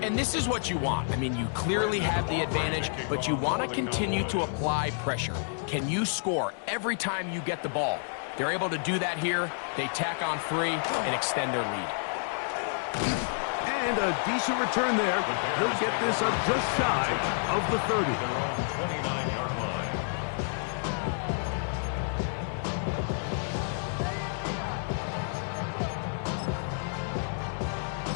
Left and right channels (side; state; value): right; silent; digital silence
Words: And this is what you want. I mean, you clearly have the advantage, but you want to continue to apply pressure. Can you score every time you get the ball? They're able to do that here. They tack on 3 and extend their lead. And a decent return there. He'll get this up just shy of the 30. Their own 29-yard line.